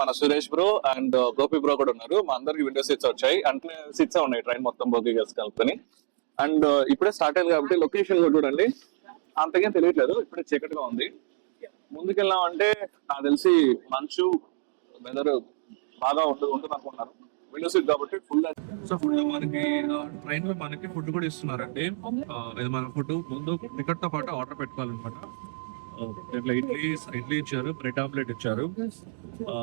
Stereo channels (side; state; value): left; silent; digital silence